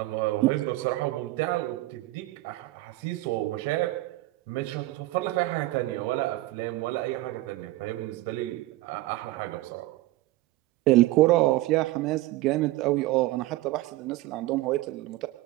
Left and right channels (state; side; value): quieter; left; 17.9 dB